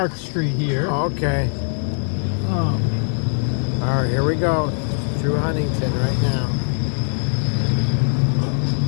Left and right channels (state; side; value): silent; right; 61 dB below the other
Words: Street here. Okay. All right, here we go. Through Huntington right now.